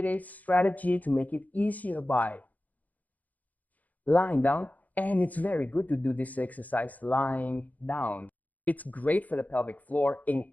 a strategy to make it easier by lying down. And it's very good to do this exercise lying down. It's great for the pelvic floor,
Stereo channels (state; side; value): late; right; 0.078 ms